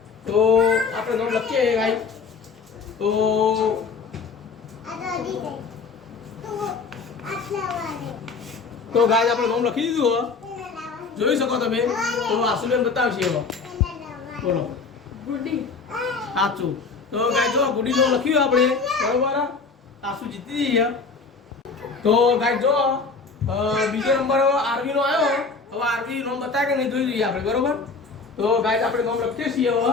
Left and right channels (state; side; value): quieter; right; 4.6 dB